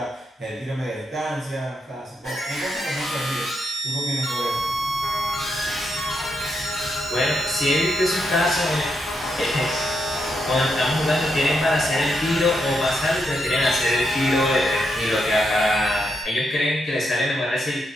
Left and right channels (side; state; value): both; normal; correlation 0.81